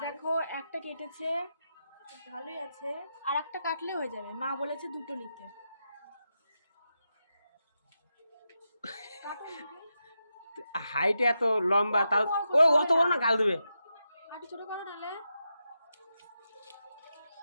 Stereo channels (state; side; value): inverted; both; correlation -0.87